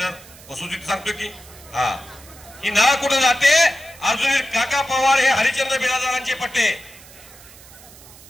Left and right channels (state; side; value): noise; right; hiss, 21 dB below the sound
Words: वसुलीत सांगतो की हा ही ना कुठं जाते. अजून काका पवार हे हरिश्चंद्र बिराजदारांचे पट्टे.